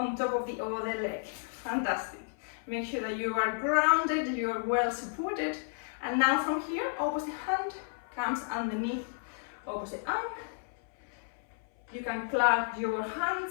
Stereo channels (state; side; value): silent; right; 56 dB below the other